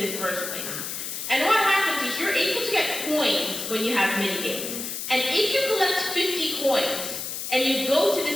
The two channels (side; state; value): left; noise; hiss, 5 dB below the sound